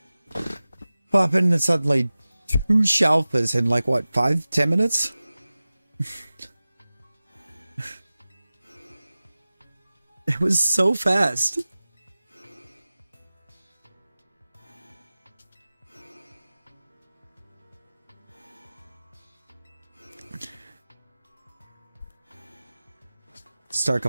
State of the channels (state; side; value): inverted; both; correlation -0.97